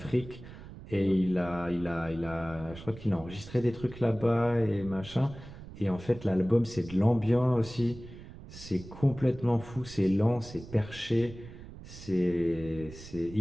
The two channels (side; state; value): right; noise; rumble, 15 dB below the sound